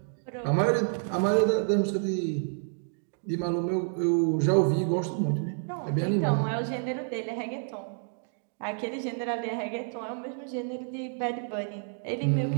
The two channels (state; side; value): silent; left; 59 dB below the other